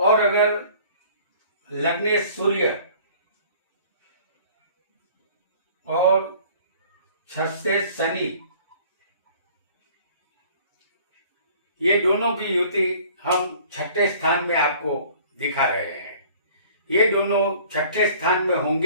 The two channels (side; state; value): both; inverted; correlation -0.51